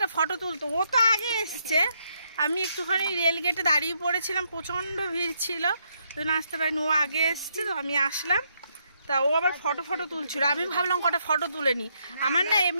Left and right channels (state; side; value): inverted; both; correlation -0.76